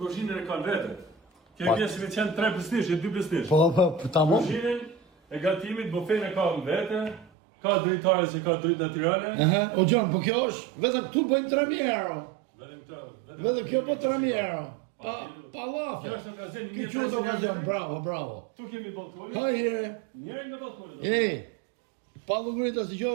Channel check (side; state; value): left; drops out; at 7.3 s